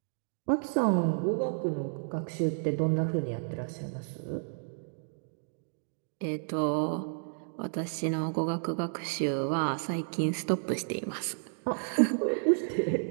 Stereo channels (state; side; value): silent; left; digital silence